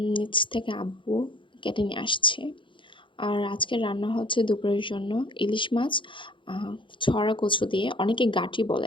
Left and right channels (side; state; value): right; late; 0.24 ms